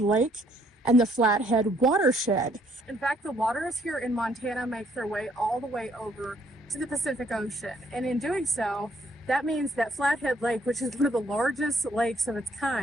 and the Flathead Watershed. In fact, the waters here in Montana make their way all the way over to the Pacific Ocean. And in doing so, that means that Flathead Lake, which is one of the largest lakes of its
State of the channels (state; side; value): normal; both; correlation 0.67